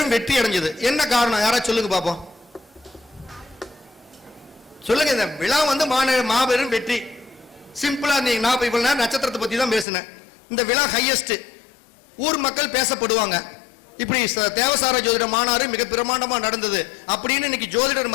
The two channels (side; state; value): right; drops out; at 9.9 s